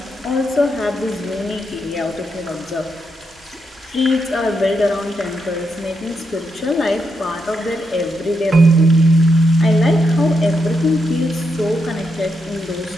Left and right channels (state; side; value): normal; both; correlation 0.82